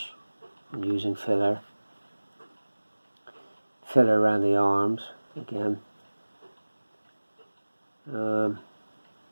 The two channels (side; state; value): both; inverted; correlation -1.00